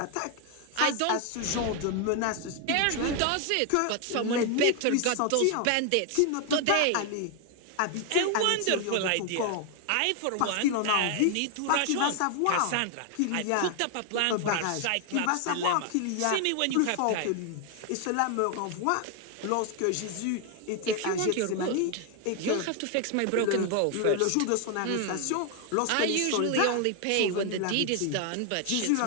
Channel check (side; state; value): both; different; correlation 0.00